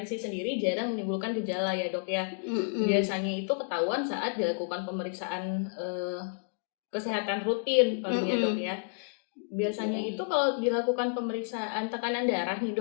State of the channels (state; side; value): silent; right; digital silence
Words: sendiri jarang menimbulkan gejala ya, dok ya. Biasanya itu ketahuan saat dilakukan pemeriksaan kesehatan rutin palingnya, dok ya. Biasanya itu kalau dilakukan pemeriksaan tekanan darah nih,